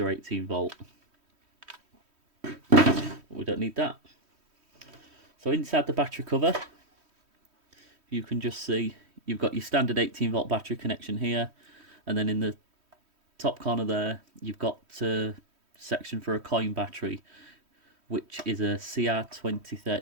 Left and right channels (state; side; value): late; left; 3.1 ms